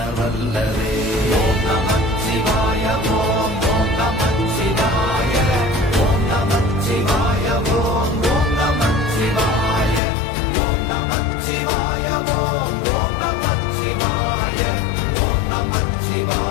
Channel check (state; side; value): drops out; right; at 10.0 s